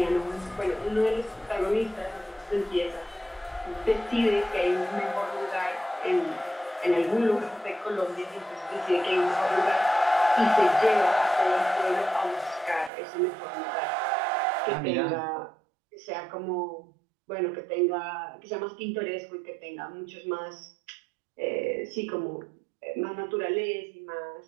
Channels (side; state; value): left; drops out; at 12.9 s